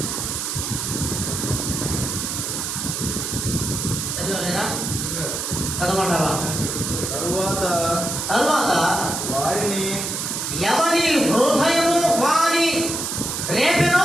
చదవలేరా? చదవమంటావా? తరువాత వారిని ఎవరి హృదయము వారి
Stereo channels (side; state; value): right; noise; hiss, 3 dB below the sound